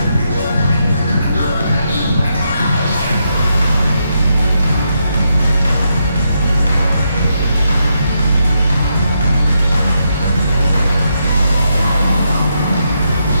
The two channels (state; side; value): inverted; both; correlation -0.81